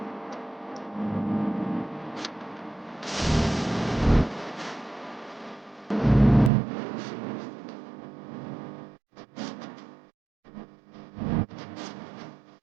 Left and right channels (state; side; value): drops out; left; at 6.5 s